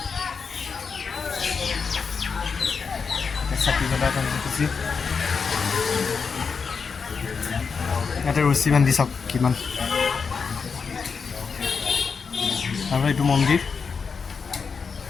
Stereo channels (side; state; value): right; quieter; 5.5 dB